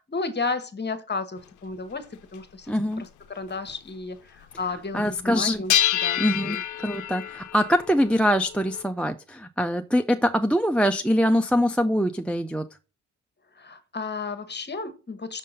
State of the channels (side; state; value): both; normal; correlation 0.67